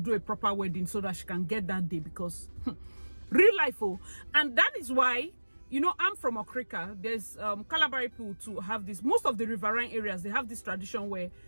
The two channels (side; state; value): both; inverted; correlation -1.00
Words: a proper wedding so that she can get that day because real life. And that is why, you know, I'm from Okrika. There's Calabari people to have this. Most of the riverine areas, they have this tradition where